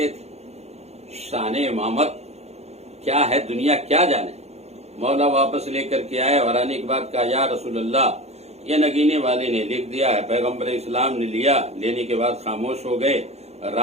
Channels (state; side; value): late; left; 0.31 ms